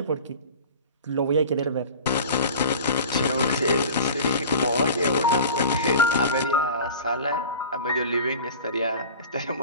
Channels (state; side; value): inverted; both; correlation -0.38